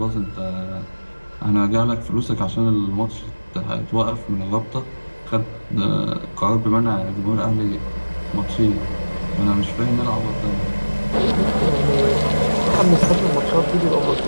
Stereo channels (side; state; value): both; inverted; correlation -1.00